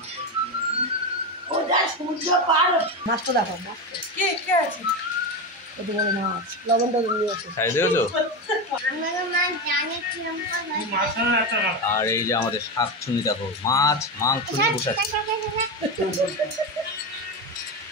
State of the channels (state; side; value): normal; both; correlation 0.16